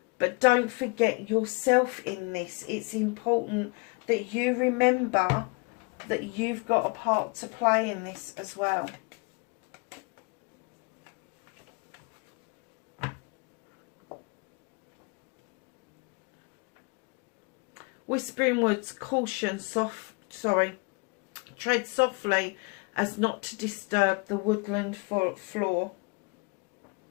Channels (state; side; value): quieter; right; 30.5 dB